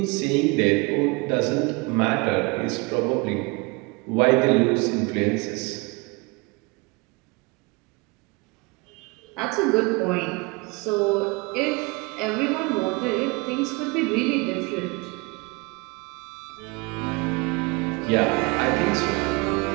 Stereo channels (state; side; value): quieter; left; 27.6 dB